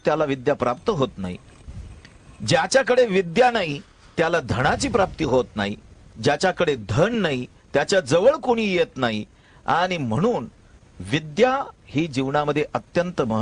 त्याला विद्या प्राप्त होत नाही. ज्याच्याकडे विद्या नाही त्याला धनाची प्राप्ती होत नाही. ज्याच्याकडे धन नाही त्याच्या जवळ कोणी येत नाही. आणि म्हणून विद्या ही जीवनामध्ये अत्यंत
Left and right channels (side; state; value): both; identical; correlation 1.00